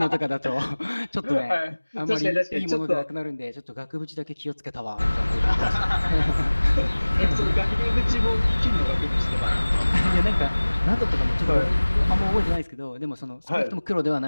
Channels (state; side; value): inverted; both; correlation -1.00